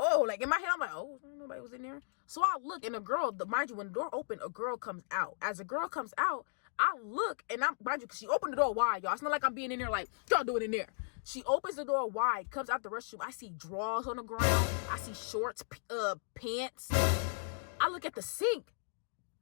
like in my head, I'm like, oh, nobody was in there. So I look, and mind you, when the door opened, a girl comes out. As a girl comes out, I look, and mind you, because she opened the door wide, y'all. It's not like I'm being in there like, y'all do it in there. She opens the door wide, comes out the restroom. I see drawers on the ground. I see shorts, pants. I look at the sink.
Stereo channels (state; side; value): silent; right; digital silence